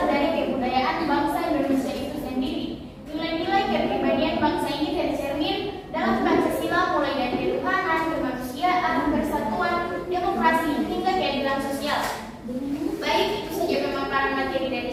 dari kebudayaan bangsa Indonesia itu sendiri. Nilai-nilai kepribadian bangsa ini tercermin dalam Pancasila, mulai dari ketuhanan, kemanusiaan, persatuan, demokrasi, hingga keadilan sosial. Baik, itu saja pemaparan materi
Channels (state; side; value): identical; both; correlation 1.00